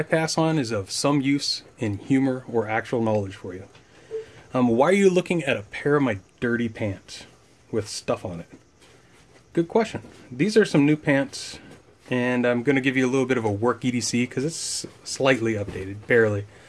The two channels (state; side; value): identical; both; correlation 1.00